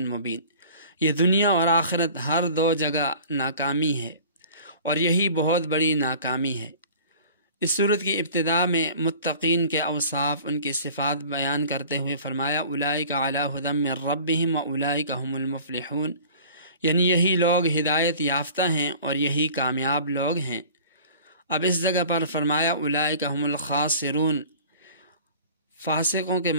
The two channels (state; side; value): inverted; both; correlation -0.45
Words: یہ دنیا اور آخرت ہر دو جگہ ناکامی ہے، اور یہی بہت بڑی ناکامی ہے۔ اس صورت کی ابتدا میں متقین کے اوصاف، ان کی صفات بیان کرتے ہوئے فرمایا اولئک علی ھدی من ربہم واولئک ھم المفلحون، یعنی یہی لوگ ہدایت یافتہ ہیں اور یہی کامیاب لوگ ہیں۔ اب اس جگہ پر فرمایا اولئک ھم الخاسرون، فاسقوں کے